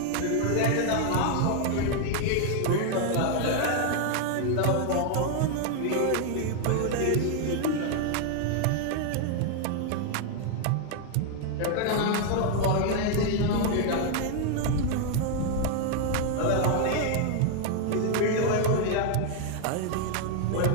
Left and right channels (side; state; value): both; different; correlation 0.00